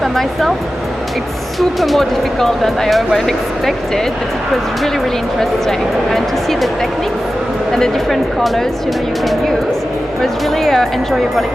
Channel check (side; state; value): both; normal; correlation 0.94